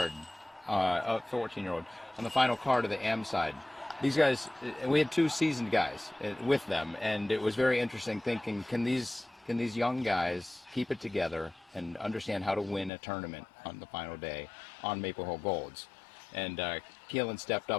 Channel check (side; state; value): right; drops out; at 12.9 s